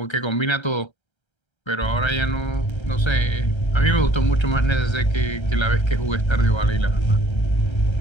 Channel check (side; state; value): right; late; 1.3 ms